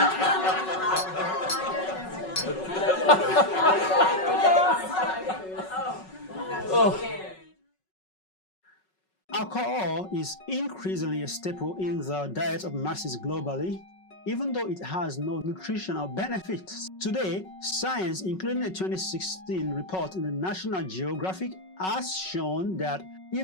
Alcohol is increasingly a staple in the diet of masses globally, even though it has no nutritional benefits. Today, science, including a 2016 report in the National Geographic, has shown that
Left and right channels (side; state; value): right; late; 5.4 ms